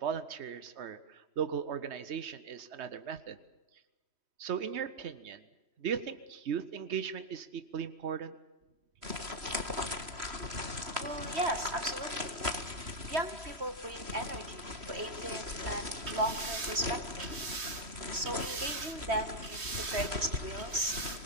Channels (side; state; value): left; late; 3.1 ms